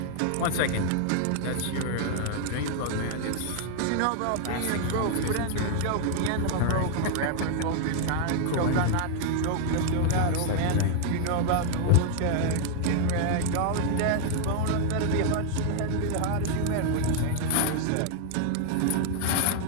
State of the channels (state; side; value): different; both; correlation 0.00